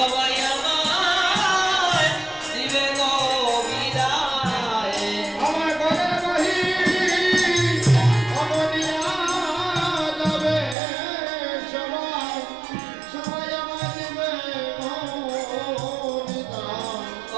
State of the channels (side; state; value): left; drops out; at 10.8 s